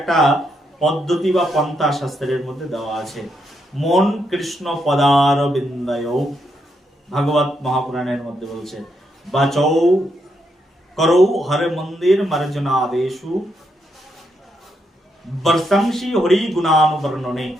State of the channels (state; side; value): normal; both; correlation 0.79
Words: পদ্ধতি বা পন্থা শাস্ত্রের মধ্যে দেওয়া আছে। মন কৃষ্ণ পদার বিন্দয়, ভাগবত মহাপুরাণের মধ্যে বলছে, বাচৌ করৌ হরে মন্দির মার্জনাদেশু বর্ষংশী হরি গুণানুবর্ণনে।